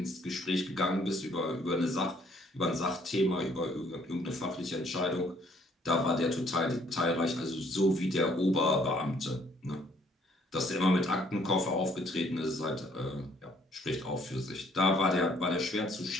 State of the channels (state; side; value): normal; both; correlation 0.63